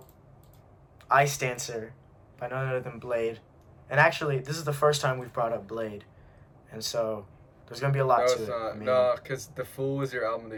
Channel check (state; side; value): identical; both; correlation 1.00